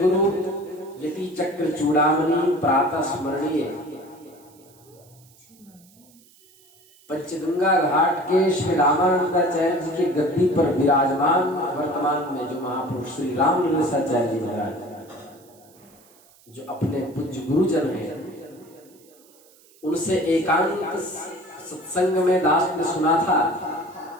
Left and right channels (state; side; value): noise; right; hiss, 28 dB below the sound